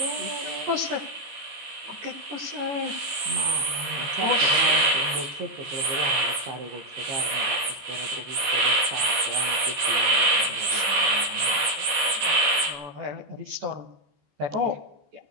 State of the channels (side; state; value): left; late; 14 ms